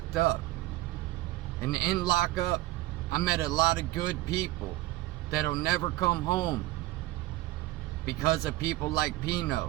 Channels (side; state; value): left; quieter; 17.3 dB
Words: up. And in lockup, I met a lot of good people that'll never come home because of people like